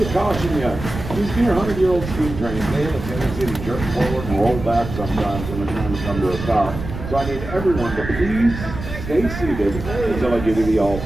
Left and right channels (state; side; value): noise; right; rumble, 8 dB below the sound